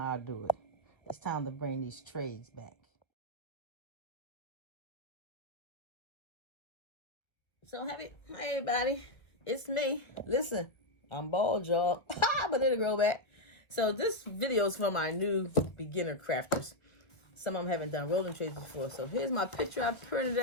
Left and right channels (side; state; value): right; late; 1.5 ms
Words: I do it. It's time to bring these trays back. So hey everybody, it's me. Listen, I'm bald, y'all, but it'll grow back. So this video is for my new beginner crafters. Some of them haven't done rolling trays before. So here's my picture I printed